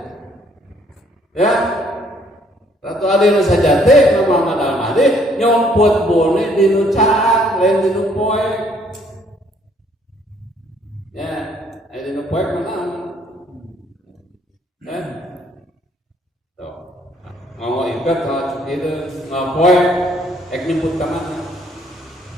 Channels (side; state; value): both; normal; correlation 0.64